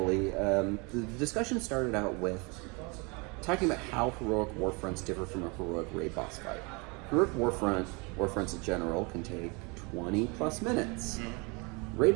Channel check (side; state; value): left; quieter; 29.6 dB